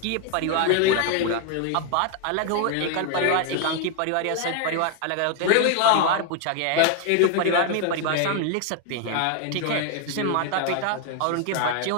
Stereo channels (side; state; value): both; different; correlation 0.00